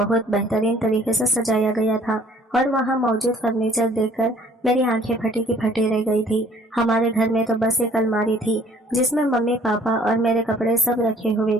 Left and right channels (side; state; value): both; normal; correlation 0.57